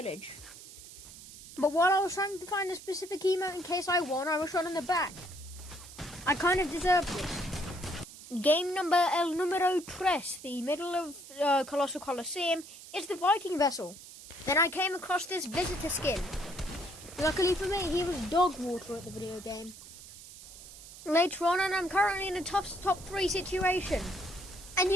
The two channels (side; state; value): right; noise; hiss, 16 dB below the sound